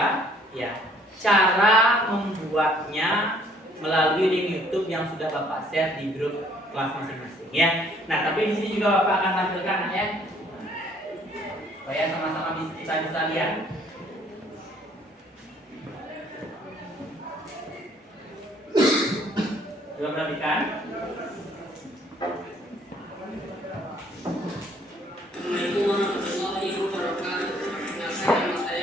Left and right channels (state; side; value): normal; both; correlation 0.61